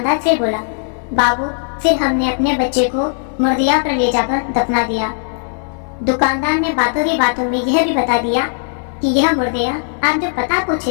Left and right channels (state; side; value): silent; right; 64 dB below the other